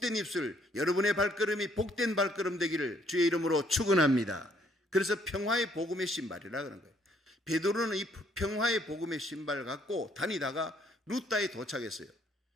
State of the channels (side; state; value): both; normal; correlation 0.66